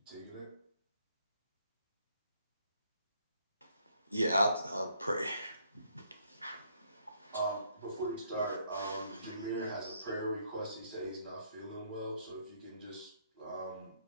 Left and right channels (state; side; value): inverted; both; correlation -0.69